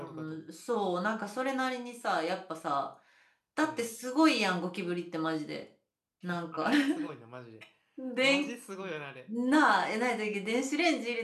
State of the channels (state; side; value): identical; both; correlation 1.00